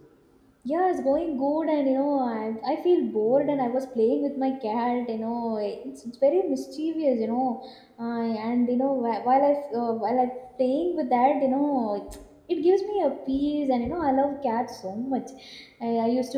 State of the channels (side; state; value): both; identical; correlation 1.00